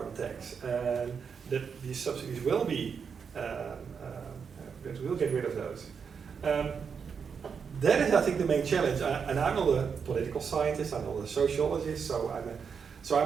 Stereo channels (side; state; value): left; quieter; 6.3 dB